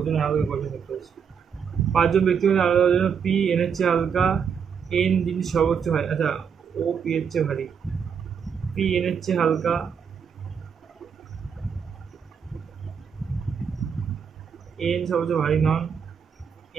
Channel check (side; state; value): left; quieter; 6.9 dB